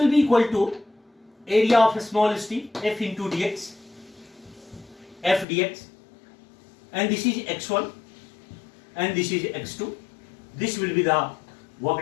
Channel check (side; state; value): right; drops out; at 5.5 s